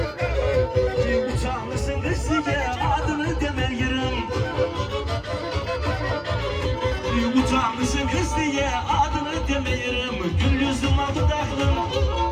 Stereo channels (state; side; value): identical; both; correlation 1.00